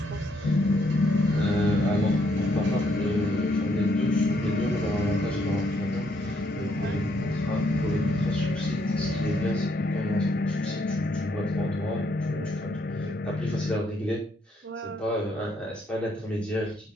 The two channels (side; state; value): both; normal; correlation 0.72